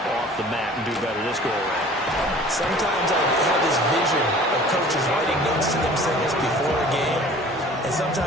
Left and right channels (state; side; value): normal; both; correlation 0.47